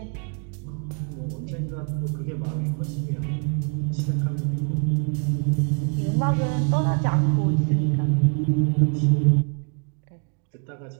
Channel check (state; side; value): quieter; left; 39.2 dB